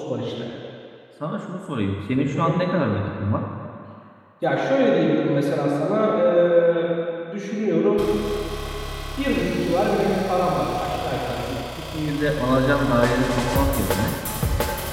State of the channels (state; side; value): identical; both; correlation 1.00